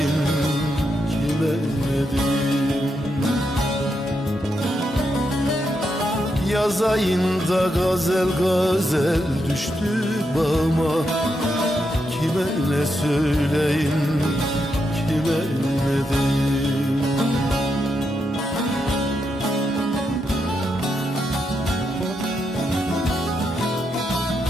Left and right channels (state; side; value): normal; both; correlation 0.83